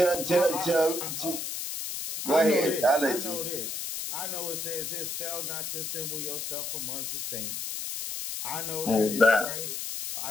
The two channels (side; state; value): left; noise; hiss, 5 dB below the sound